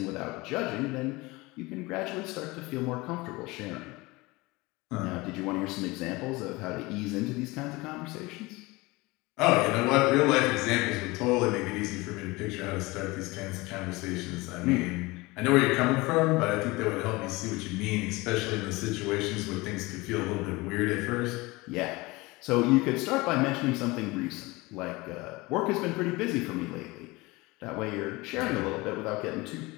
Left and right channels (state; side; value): quieter; right; 22.6 dB